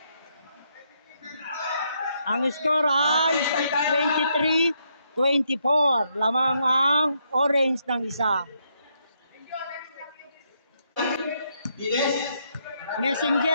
Ang score ay 23-24. Lamang ang orange ng isa. Bilis.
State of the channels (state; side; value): inverted; both; correlation -0.76